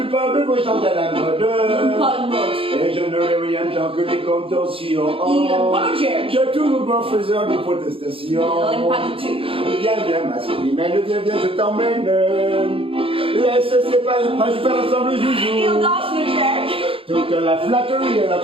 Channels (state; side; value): late; left; 0.27 ms